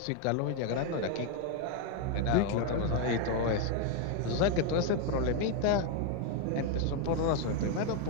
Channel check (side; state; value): both; different; correlation 0.01